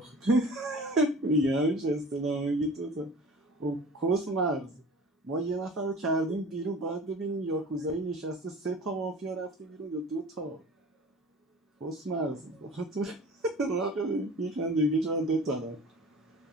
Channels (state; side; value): normal; both; correlation 0.41